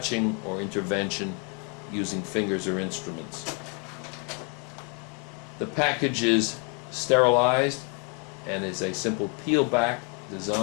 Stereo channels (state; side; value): quieter; right; 34.6 dB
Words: or intervention using fingers or instruments. The package is sterilized and is a simple peel-back